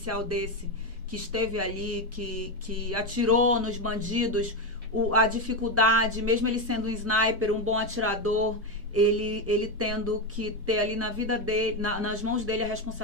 desse, que esteve ali, que atirou nos bandidos, a dificuldade, mesmo ele sendo um sniper, um bom atirador, ele tendo que ter ali na vida dele, nas mãos dele a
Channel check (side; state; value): both; normal; correlation 0.11